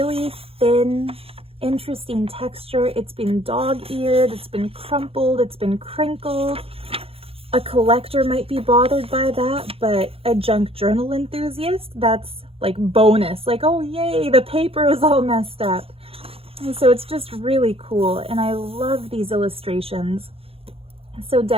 thin, interesting texture. It's been dog-eared, it's been crumpled, it's been crinkled. A collector might be bothered by that, but a junk journal enthusiast, that's like bonus. Like, oh yay, the paper is all messed up. And so it's just really cool, and I love these illustrations. So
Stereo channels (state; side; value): late; left; 0.27 ms